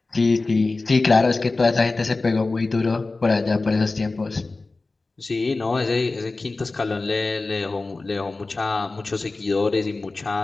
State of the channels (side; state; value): right; quieter; 3.5 dB